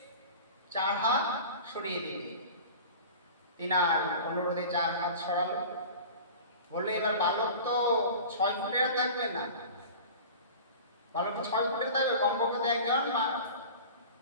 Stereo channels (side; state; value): both; inverted; correlation -0.37